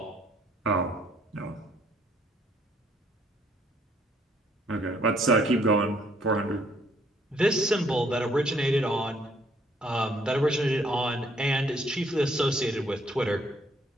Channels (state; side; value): normal; both; correlation 0.66